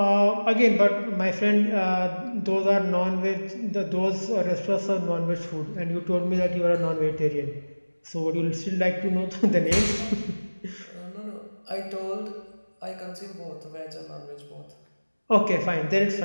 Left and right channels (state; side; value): inverted; both; correlation -1.00